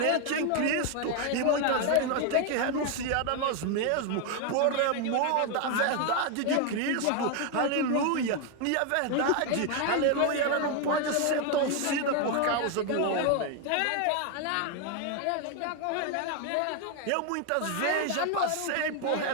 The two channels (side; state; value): both; different; correlation 0.01